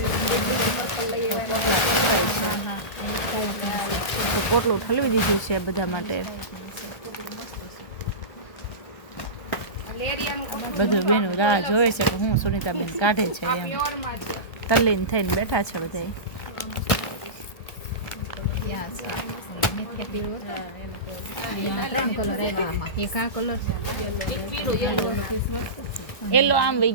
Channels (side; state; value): right; late; 1.2 ms